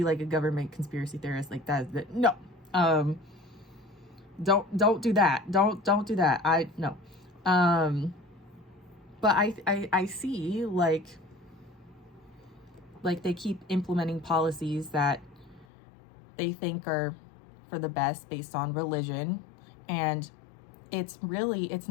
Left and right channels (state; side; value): drops out; right; at 15.7 s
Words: like a government conspiracy theorist like that. No. Don't do that. Don't do that. No. But I see like they keep implementing policies that they think are for the best based on religion, and it's